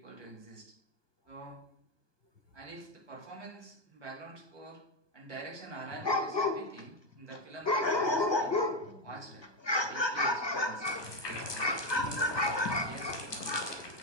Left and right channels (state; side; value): late; right; 1.2 ms